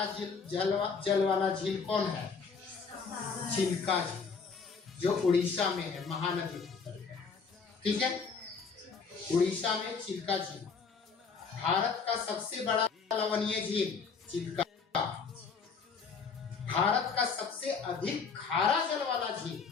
जल वाला झील कौन है, चिल्का झील, जो उड़ीसा में है, महानदी, ठीक है। उड़ीसा में चिल्का झील। भारत का सबसे बड़ा लवणीय झील चिल्का। भारत का सबसे अधिक खारा जल वाला झील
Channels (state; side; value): quieter; right; 5.3 dB